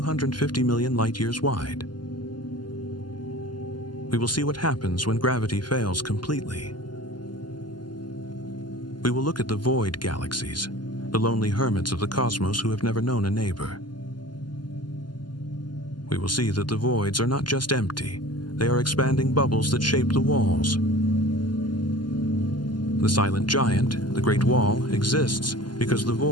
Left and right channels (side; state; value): right; late; 0.71 ms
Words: million light-years wide. We will see what happens when gravity fails completely. We will look at the void galaxies, the lonely hermits of the cosmos who have never known a neighbor. We will see that the voids are not just empty, they are expanding bubbles that shape the walls. The silent giant, the Great Wall, exists because the